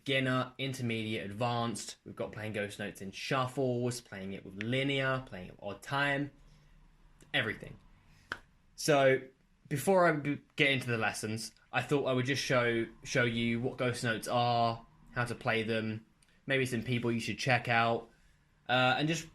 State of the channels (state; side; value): identical; both; correlation 1.00